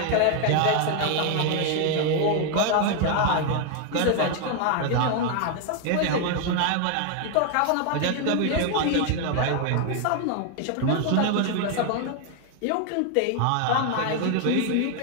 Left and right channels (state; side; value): different; both; correlation 0.01